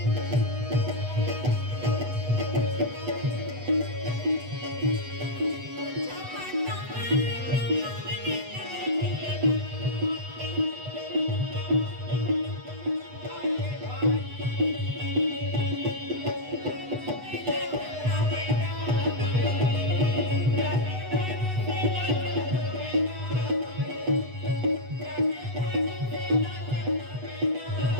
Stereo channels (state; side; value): late; left; 8.1 ms